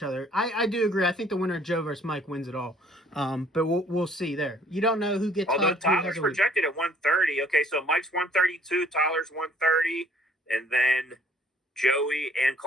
other. I do agree. I think the winner of Joe versus Mike wins it all. But we'll see there. You don't know who gets. Although Tyler's projected at 130. Okay, so Mike's 132, Tyler's 130, and then Joey and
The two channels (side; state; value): both; normal; correlation 0.59